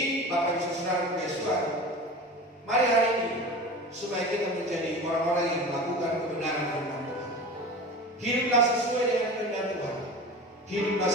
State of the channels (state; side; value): normal; both; correlation 0.33